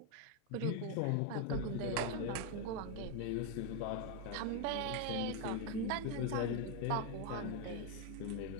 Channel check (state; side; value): different; both; correlation 0.01